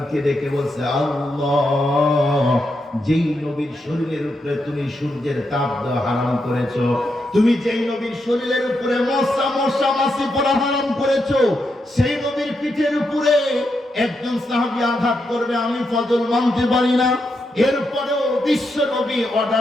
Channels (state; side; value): normal; both; correlation 0.83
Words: ডেকে বলছে, আল্লাহ যেই নবীর শরীরের উপরে তুমি সূর্যের তাপ দেওয়া হারাম করেছো, তুমি যেই নবীর শরীরের উপরে মশা মাছি পড়া হারাম করেছো, সেই নবীর পিঠের উপরে একজন সাহাবী আঘাত করবে আমি ফজল মানতে পারি না। এরপরেও বিশ্ব নবী